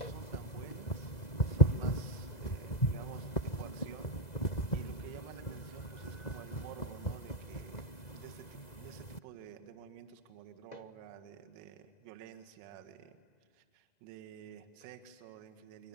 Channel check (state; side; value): late; right; 2.0 ms